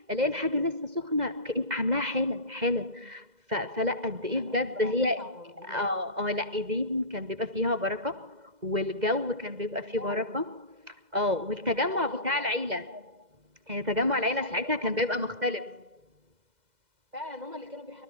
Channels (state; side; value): late; left; 2.0 ms